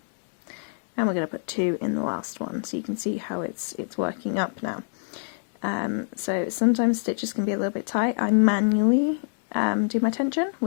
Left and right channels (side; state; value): right; silent; digital silence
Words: and we're going to put 2 in the last one, so you can see how it's working up now. So sometimes stitches can be a little bit tight. I manually do my tension